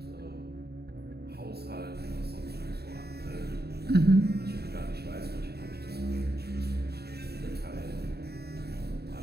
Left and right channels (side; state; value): left; late; 0.47 ms